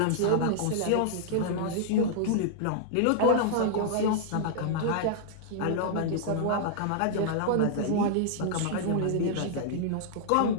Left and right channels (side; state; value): both; different; correlation -0.01